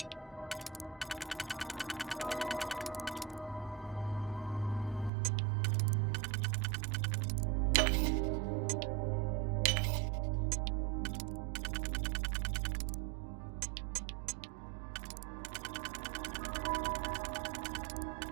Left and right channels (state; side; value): drops out; left; at 5.1 s